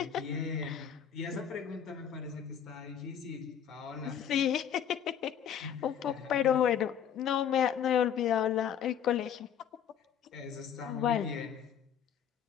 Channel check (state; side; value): quieter; right; 8.8 dB